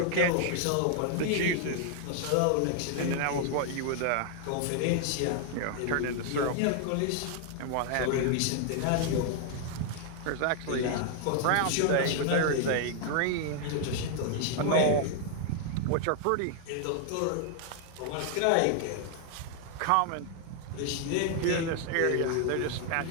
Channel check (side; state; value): both; different; correlation 0.00